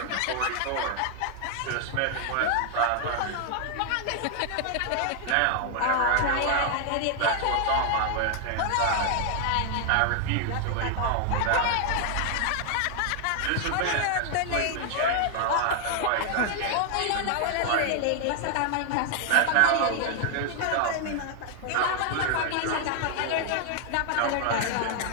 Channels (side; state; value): both; different; correlation 0.00